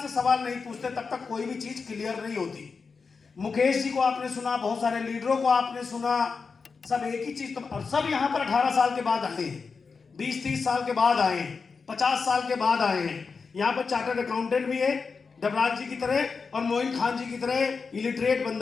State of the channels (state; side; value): quieter; right; 5.0 dB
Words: से सवाल नहीं पूछते तब तक कोई भी चीज क्लियर नहीं होती। मुकेश जी को आपने सुना, बहुत सारे लीडरों को आपने सुना, सब एक ही चीज, तो और सब यहाँ पर 18 साल के बाद आए हैं, 20-30 साल के बाद आए हैं, 50 साल के बाद आए हैं। यहाँ पर चार्टर्ड अकाउंटेंट भी है डबराज जी की तरह और मोइन खान जी की तरह इलिटरेट